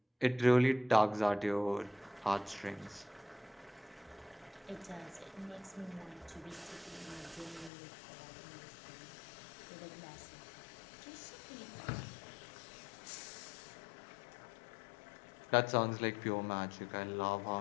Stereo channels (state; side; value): drops out; right; at 7.7 s